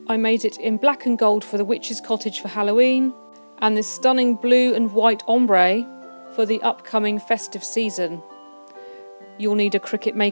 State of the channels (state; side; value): inverted; both; correlation -1.00